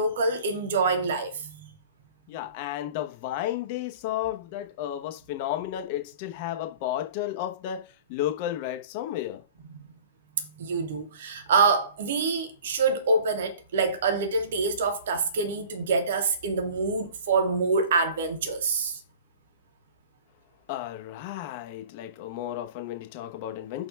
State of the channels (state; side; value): inverted; both; correlation -0.44